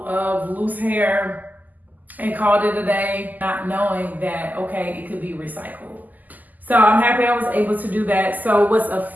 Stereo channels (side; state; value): left; late; 0.082 ms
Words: of loose hair and called it a day, not knowing that, okay, it could be recycled. So I'm happy I was able to do that. So what's